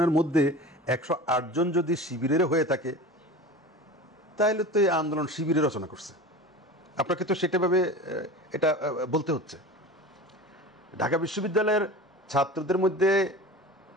মধ্যে 108 জন যদি শিবিরের হয়ে থাকে, তাহলে তো এই আন্দোলন শিবিরে রচনা করছে। আপনাকে তো সেটাভাবে এটা বলতে হচ্ছে। ঢাকা বিশ্ববিদ্যালয়ের ছাত্রদের মধ্যে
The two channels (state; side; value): normal; both; correlation 0.34